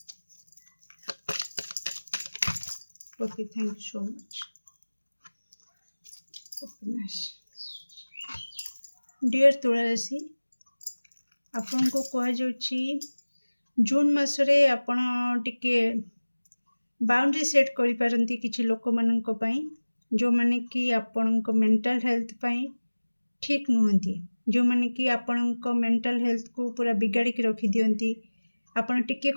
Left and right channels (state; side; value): inverted; both; correlation -1.00